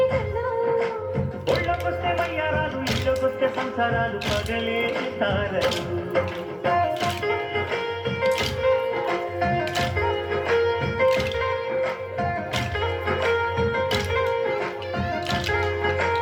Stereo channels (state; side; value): identical; both; correlation 1.00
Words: ఒళ్ళకొస్తే వయ్యారాలు ఇళ్ళకొస్తే సంసారాలు పగలే తారలు